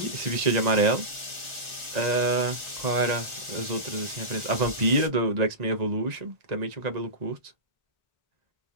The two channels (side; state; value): left; late; 1.4 ms